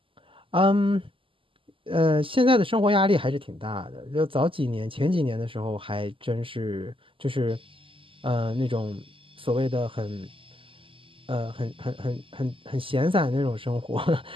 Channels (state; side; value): late; left; 0.25 ms